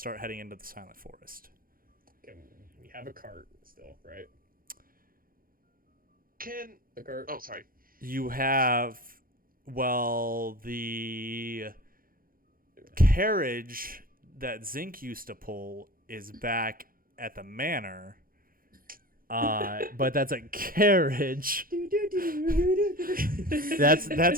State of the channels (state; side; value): late; left; 0.42 ms